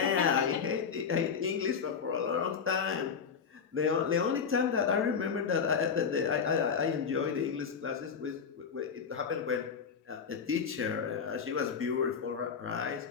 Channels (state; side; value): quieter; right; 6.4 dB